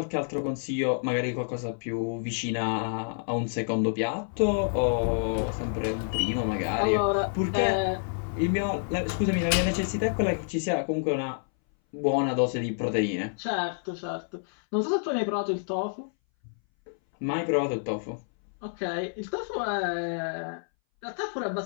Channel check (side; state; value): right; silent; 59 dB below the other